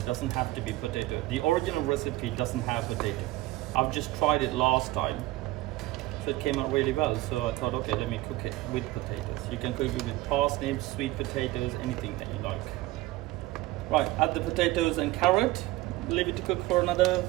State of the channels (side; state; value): left; quieter; 18.5 dB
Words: doesn't have to be potato. The original recipe doesn't have potato. I've just tried it last time, so it came out really well. So I thought, okay, let me cook it with potatoes. You can cook it with parsnips, sweet potatoes, anything that you like. Right, add the potatoes and carrot. Leave it to cook for another